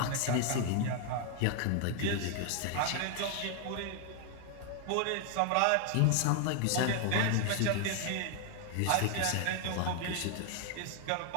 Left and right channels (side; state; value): both; different; correlation 0.00